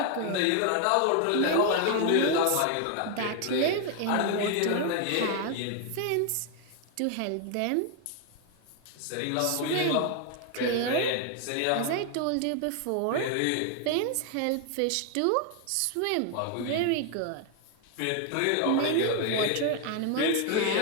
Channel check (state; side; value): different; both; correlation 0.00